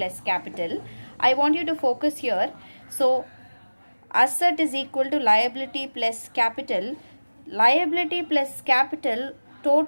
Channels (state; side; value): inverted; both; correlation -1.00